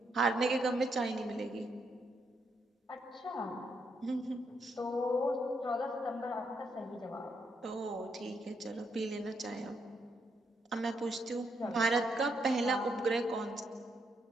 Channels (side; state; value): both; normal; correlation 0.77